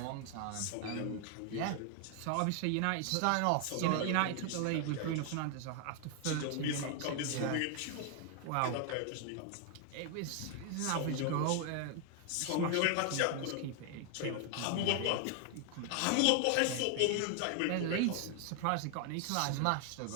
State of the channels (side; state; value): both; different; correlation 0.00